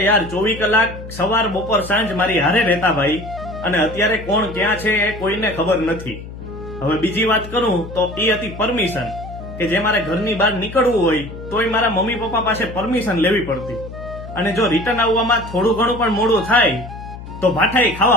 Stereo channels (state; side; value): noise; left; hum, 13 dB below the sound